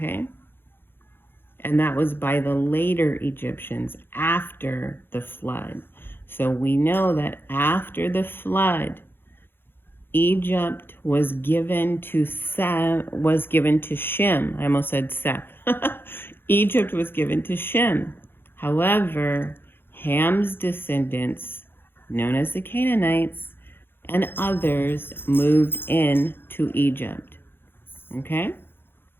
And that was by the later Egyptians after the flood. So we know that after the flood, Egypt was given to Shem. I almost said Seth. Egypt was given to Shem. However, Ham's descendants, known as the Canaanites, and others moved in to Egypt. Okay?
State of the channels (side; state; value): right; late; 0.10 ms